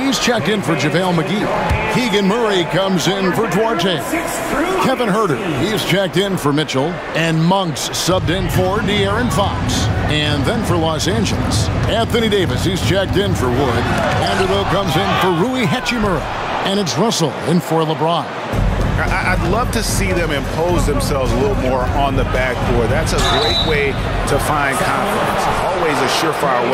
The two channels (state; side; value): identical; both; correlation 1.00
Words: checked in for JaVale McGee. Keegan Murray comes in for Duarte. Kevin Huerter, he's checked in for Mitchell. And Monks subbed in for De'Aaron Fox. And then for Los Angeles, Anthony Davis, he's checked in for Wood. Vanderbilt comes in for Rui Hachimura. And it's Russell in for LeBron. I'd love to see them impose themselves a little more on the backboard. That's a great way to find confidence. Always a surefire